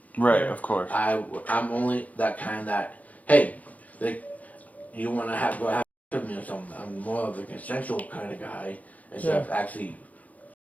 Right, of course. I'm only that kind that. Hey, you want to go have with me or something? I'm more of a consensual kind of guy instead of actually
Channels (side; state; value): right; late; 0.074 ms